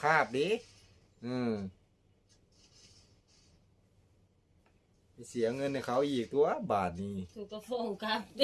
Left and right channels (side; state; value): both; identical; correlation 1.00